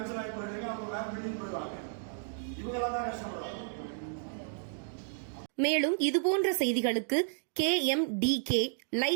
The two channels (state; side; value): silent; left; digital silence